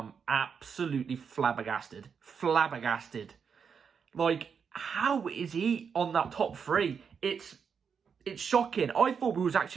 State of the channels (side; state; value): left; quieter; 6.5 dB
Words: absolutely flabbergasted. Flabbergasted. Like, how is he on that top three? It's shocking. I thought we was